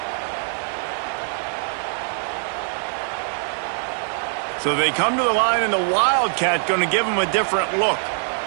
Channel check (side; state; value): left; silent; digital silence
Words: So they come to the line, and the Wildcat going to give them a different look.